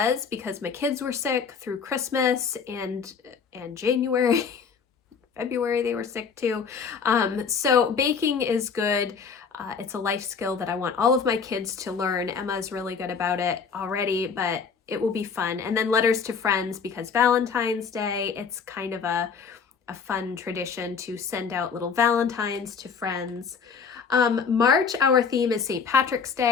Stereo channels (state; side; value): quieter; right; 5.9 dB